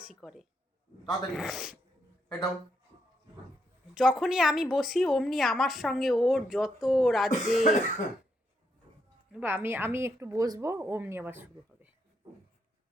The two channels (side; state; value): both; normal; correlation 0.78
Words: করে। তাড়াতাড়ি এটাও। যখনই আমি বসি অমনি আমার সঙ্গে ওর যত রাজ্যে আমি আমি একটু বসবো অমনি আবার শুরু হবে।